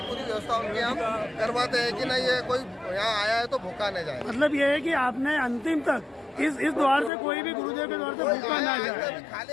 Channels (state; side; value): drops out; right; at 7.1 s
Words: पूरी व्यवस्था उनकी हम करवाते हैं कि नहीं ये कोई यहाँ आया है तो भूखा नहीं जाए। मतलब ये है कि आपने अंतिम तक इस द्वार से कोई भी गुरुदेव के द्वार से भूखा ना जाए। खाली